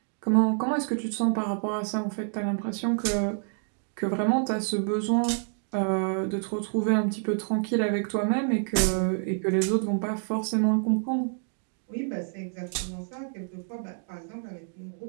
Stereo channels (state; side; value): silent; left; 59 dB below the other